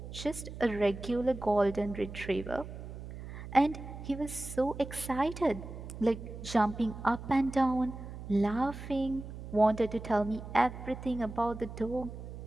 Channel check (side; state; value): right; noise; hum, 11 dB below the sound